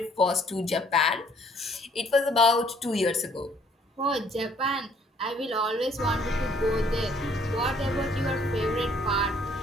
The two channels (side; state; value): both; normal; correlation 0.62